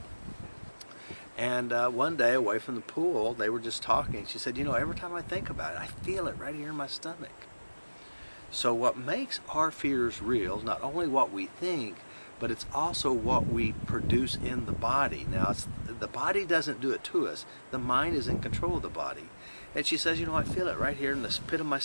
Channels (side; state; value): both; inverted; correlation -1.00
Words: And one day away from the pool, they were just talking. She said, every time I think about it, I feel it right here in my stomach. So what makes our fears real is not only what we think, but it's also what we produce in the body. Now, the body doesn't do it to us. The mind is in control of the body. And she says, I feel it right here in the pit of my